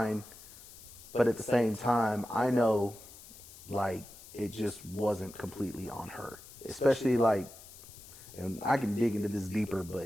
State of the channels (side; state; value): left; noise; hiss, 18 dB below the sound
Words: But at the same time, I know, like, it just wasn't completely on her. Especially, like, and I can dig into this deeper,